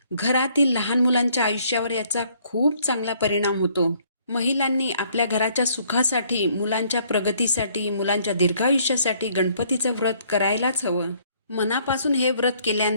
घरातील लहान मुलांच्या आयुष्यावर याचा खूप चांगला परिणाम होतो. महिलांनी आपल्या घराच्या सुखासाठी, मुलांच्या प्रगतीसाठी, मुलांच्या दीर्घायुष्यासाठी गणपतीचं व्रत करायलाच हवं. मनापासून हे व्रत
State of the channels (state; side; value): inverted; both; correlation -0.64